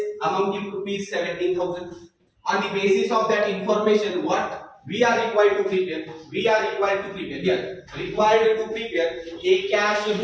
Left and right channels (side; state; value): both; identical; correlation 1.00